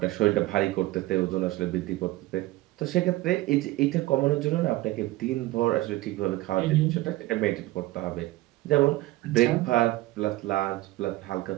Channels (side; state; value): left; quieter; 18.3 dB